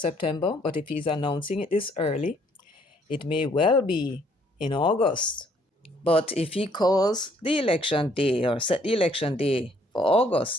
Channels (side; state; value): both; normal; correlation 0.65